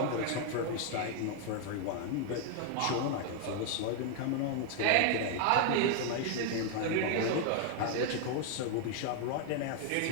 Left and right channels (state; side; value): different; both; correlation 0.00